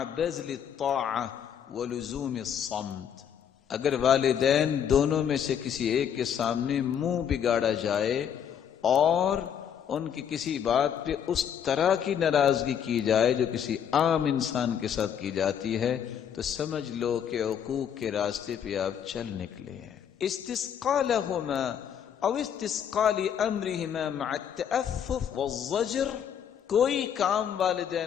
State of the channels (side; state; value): right; quieter; 8.6 dB